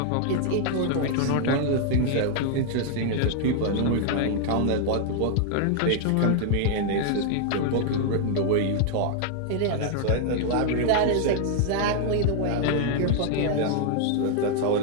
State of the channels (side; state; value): both; different; correlation 0.00